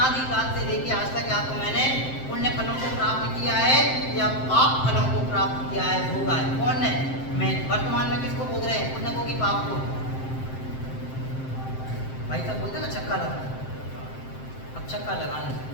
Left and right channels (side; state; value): right; late; 7.7 ms